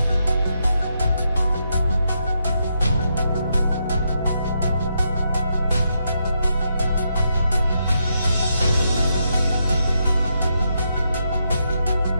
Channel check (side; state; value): both; inverted; correlation -0.80